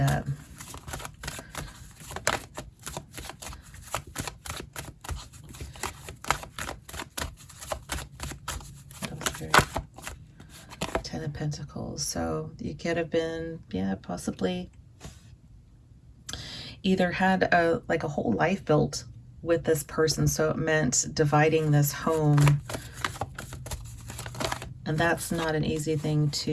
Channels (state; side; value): identical; both; correlation 1.00